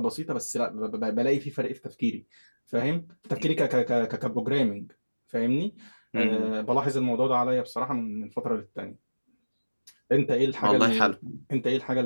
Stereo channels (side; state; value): both; inverted; correlation -1.00